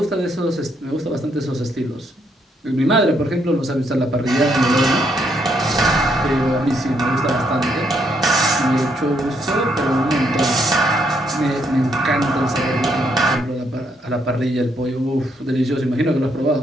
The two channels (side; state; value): both; normal; correlation 0.74